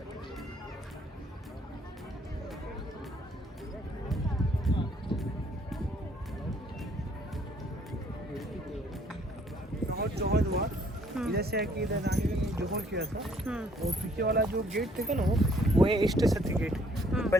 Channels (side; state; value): both; normal; correlation 0.63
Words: बहुत जौहर हुआ इधर से है कि इधर रानी ने जौहर किया था। और पीछे वाला जो गेट थे ना वो है इष्ट सती गेट।